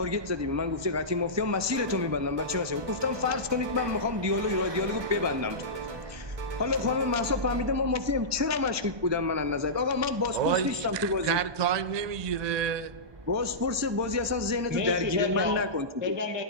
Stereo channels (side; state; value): left; late; 1.2 ms